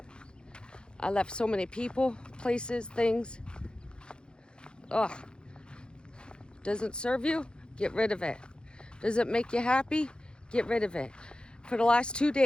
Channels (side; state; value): right; late; 0.050 ms